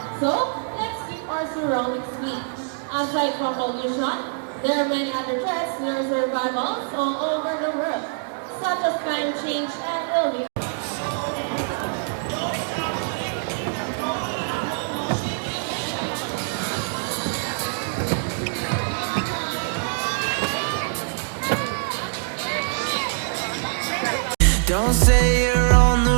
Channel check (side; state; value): left; silent; digital silence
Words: So, let's keep our surroundings clean. Aside from pollution, there are many other threats to their survivals all over the world, such as climate change and illness. Don't say you're